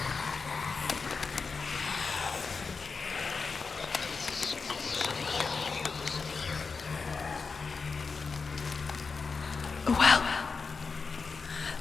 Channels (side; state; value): right; quieter; 4.8 dB